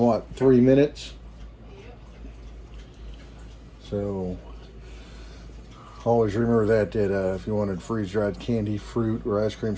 3 minutes? So always remember that if you wanted freeze-dried candy, fruit, or ice cream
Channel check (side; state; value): both; identical; correlation 1.00